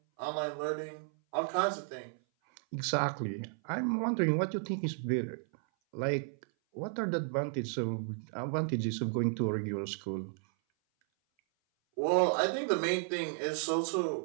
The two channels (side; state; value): left; silent; 55 dB below the other